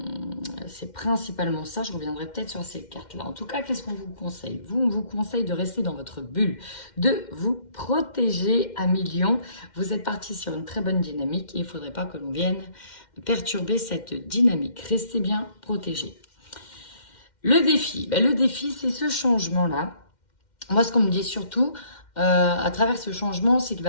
C'est principalement ça, je reviendrai peut-être sur ces cartes-là. En tout cas, qu'est-ce qu'on vous conseille? On vous conseille de rester dans votre bulle, de vous protéger à millions. Vous êtes parti sur une très bonne dynamique et il ne faudrait pas que l'on vienne perturber cette dynamique. Restez bien protégés. Le défi, c'est ce changement-là. Moi, ce qu'on me dit surtout, à travers ce changement, c'est qu'il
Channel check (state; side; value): late; right; 2.1 ms